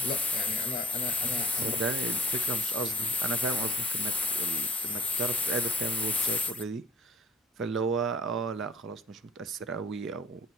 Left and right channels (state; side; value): normal; both; correlation 0.50